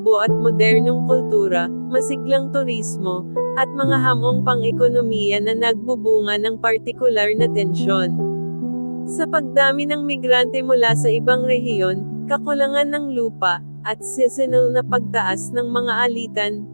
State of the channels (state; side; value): inverted; both; correlation -1.00